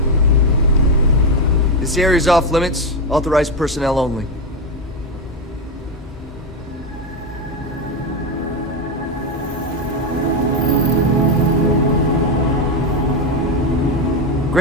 This area's off limits. Authorized personnel only.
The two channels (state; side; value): normal; both; correlation 0.10